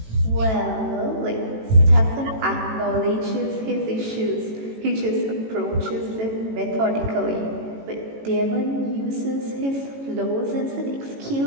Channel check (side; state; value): left; late; 18 ms